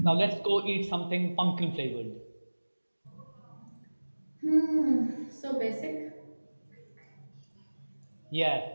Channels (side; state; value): both; inverted; correlation -1.00